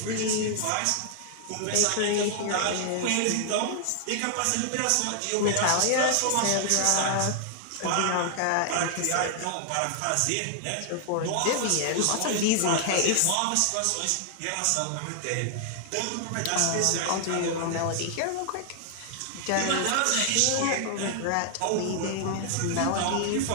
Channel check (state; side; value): different; both; correlation 0.00